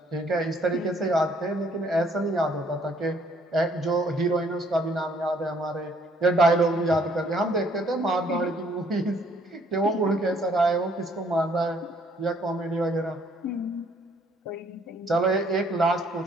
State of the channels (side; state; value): both; normal; correlation 0.64